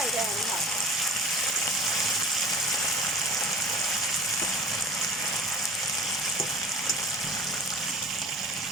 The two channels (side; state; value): both; normal; correlation 0.41